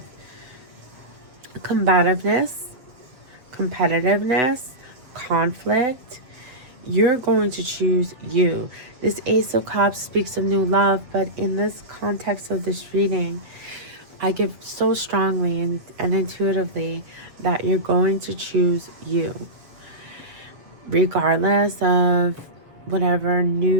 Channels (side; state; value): left; late; 8.0 ms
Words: combativeness, competitiveness, conflict. You're going to choose you. This Ace of Cups speaks of new love, but in this context of this reading, I give so strongly and intuitively that you're going to choose you. Regardless of whatever